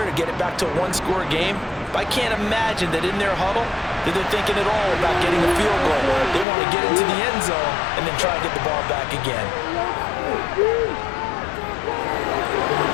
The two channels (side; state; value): right; drops out; at 6.5 s